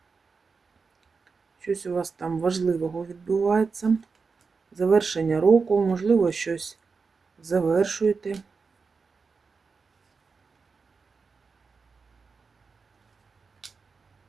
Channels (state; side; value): quieter; left; 4.8 dB